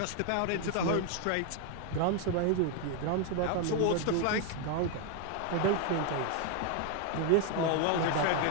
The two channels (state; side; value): different; both; correlation 0.01